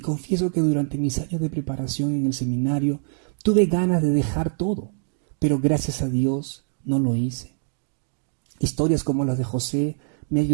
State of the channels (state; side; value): silent; left; digital silence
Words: que durante mis años de preparación en el seminario tuve ganas de dejar todo, pero gracias a Dios no lo hice. Historias como las de José me